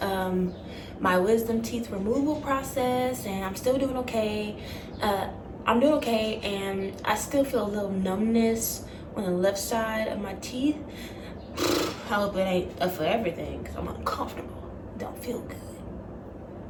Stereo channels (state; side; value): identical; both; correlation 1.00